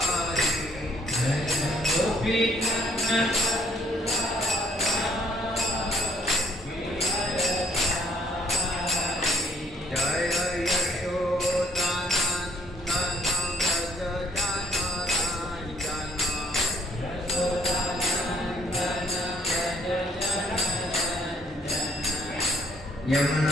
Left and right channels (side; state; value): both; normal; correlation 0.64